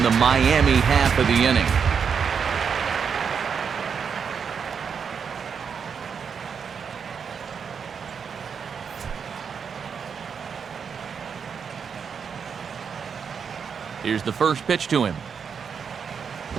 the Miami half of the inning. Here's the first pitch to him.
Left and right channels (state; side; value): quieter; left; 6.5 dB